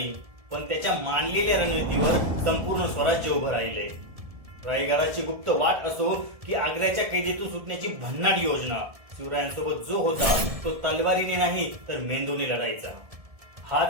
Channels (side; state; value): left; late; 1.7 ms